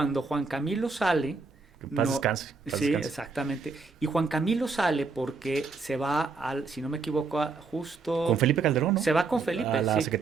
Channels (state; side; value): quieter; left; 4.4 dB